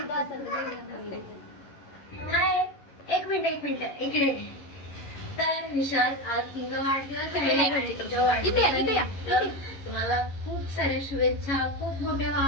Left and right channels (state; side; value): late; right; 11 ms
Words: एक मिनिट इकडे तर विशाल आज तुला वाढदिवस आहे तुझ्या वाढदिवसानिमित्त तुम्हाला खूप साऱ्या शुभेच्छा खूप मोठे व्हा